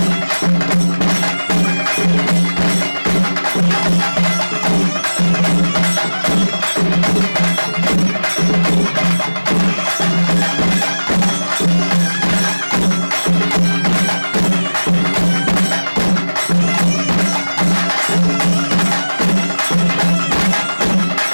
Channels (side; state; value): both; inverted; correlation -1.00